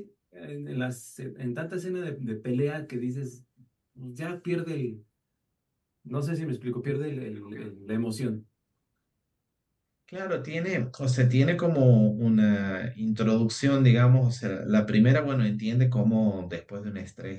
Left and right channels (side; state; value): both; identical; correlation 1.00